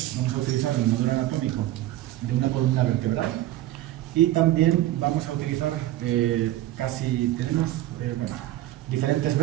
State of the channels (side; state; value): left; quieter; 14.8 dB